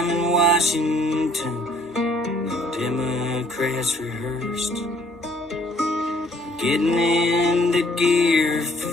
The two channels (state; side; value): normal; both; correlation 0.61